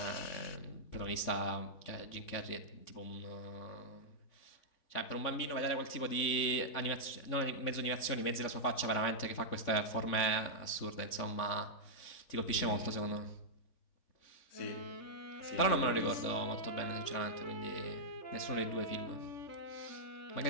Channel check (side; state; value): right; late; 3.5 ms